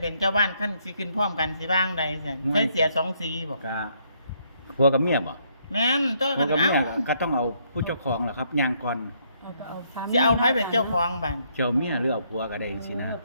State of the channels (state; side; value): inverted; both; correlation -0.71